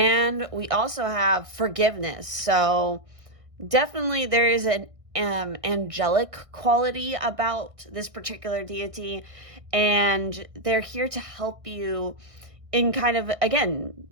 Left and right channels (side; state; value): left; late; 1.6 ms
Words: we also have forgiveness. So definitely there is an angelic quality about this particular deity. And they're here to help you in kind of, again,